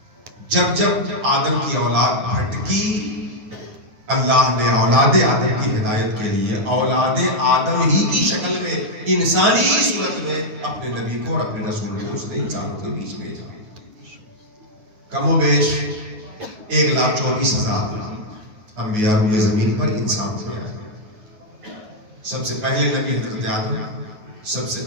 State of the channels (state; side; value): late; left; 9.3 ms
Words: جب جب آدم کی اولاد بھٹکی، اللہ نے اولاد آدم کی ہدایت کے لیے اولاد آدم ہی کی شکل میں، انسانی صورت میں اپنے نبی کو اور اپنے رسول کو اس نے انسانوں کے بیچ بھیجا۔ کم و بیش 1,24,000 انبیاء روئے زمین پر انسان سے آئے۔ سب سے پہلے نبی حضرت آدم، سب سے